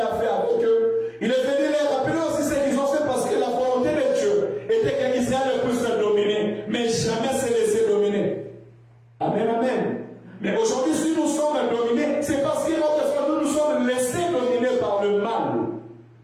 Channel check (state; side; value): identical; both; correlation 1.00